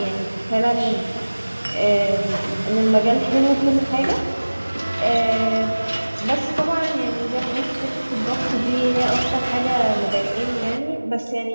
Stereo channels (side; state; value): both; inverted; correlation -1.00